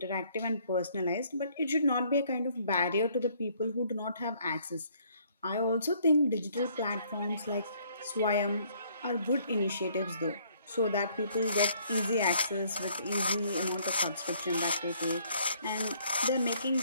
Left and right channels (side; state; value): both; inverted; correlation -0.64